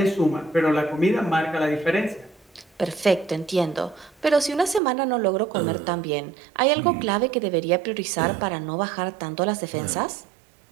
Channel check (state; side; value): drops out; left; at 4.8 s